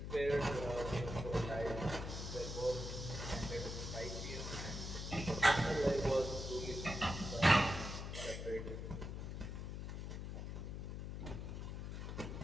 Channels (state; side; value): noise; left; hum, 5 dB below the sound